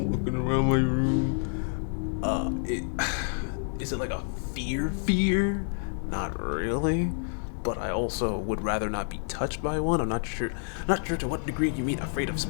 around my room. Is it like a fear? Not really. But I also would rather not be touched by one. I'm not sure to what degree you mean afraid of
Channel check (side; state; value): right; silent; digital silence